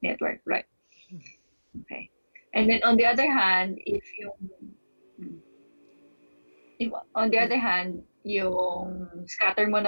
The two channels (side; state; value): both; inverted; correlation -1.00